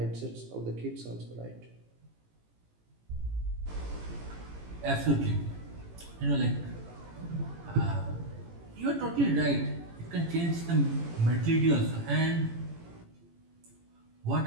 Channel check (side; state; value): left; late; 18 ms